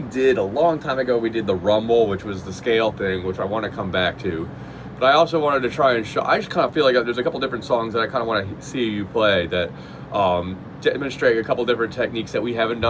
did a long time ago. We did the rumble, which was the scale thing, which I want to come back to. But I also wanted to try and show. I just kind of feel like there's a couple different songs that I kind of want to see you play that demonstrate a couple different techniques that we haven't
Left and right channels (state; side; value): identical; both; correlation 1.00